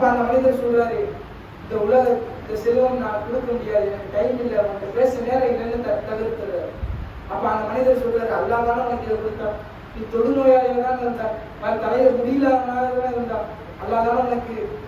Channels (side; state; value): both; identical; correlation 1.00